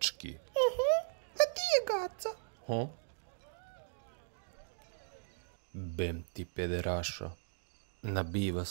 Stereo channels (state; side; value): silent; left; digital silence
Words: A ti je Gaca? Ha? Bem ti pederašo, nabiva